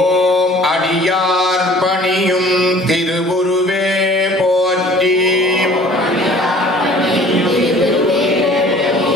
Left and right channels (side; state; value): both; normal; correlation 0.50